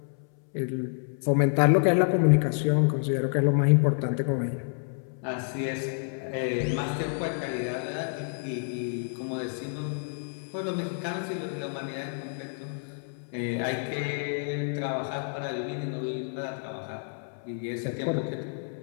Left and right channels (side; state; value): right; silent; 59 dB below the other